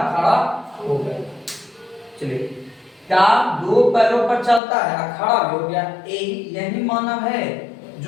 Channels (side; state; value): right; drops out; at 4.6 s